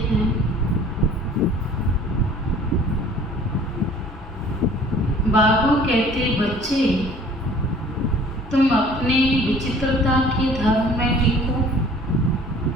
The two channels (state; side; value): normal; both; correlation 0.51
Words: हैं? बाबा कहते, बच्चे तुम अपने विचित्रता के धर्म में टिको,